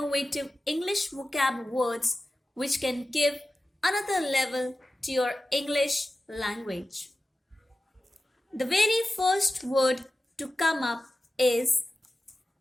English vocab words which can give another level to your English language. The very first word to come up is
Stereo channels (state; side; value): normal; both; correlation 0.94